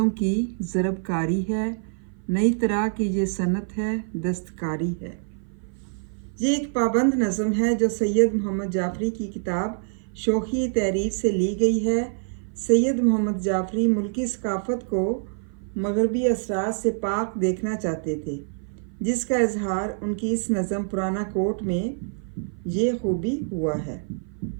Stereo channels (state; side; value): silent; left; 55 dB below the other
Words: की ज़रबकारी है, नई तरह की ये सनत है, दस्तकारी है। ये एक पाबंद नज़म है जो सैयद मोहम्मद जाफरी की किताब शोखी तहरीर से ली गई है। सैयद मोहम्मद जाफरी मुल्की सकाफ़त को मगरबी असरात से पाक देखना चाहते थे, जिसका इजहार उनकी इस नज़म पुराना कोट में ये खूबी हुआ है।